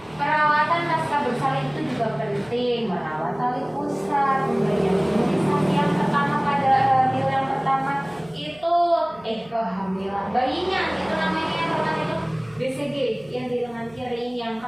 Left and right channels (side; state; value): right; noise; hum, 25 dB below the sound